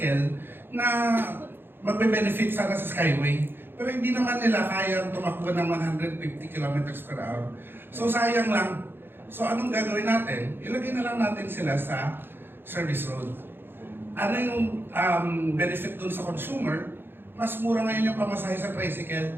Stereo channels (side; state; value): left; late; 0.10 ms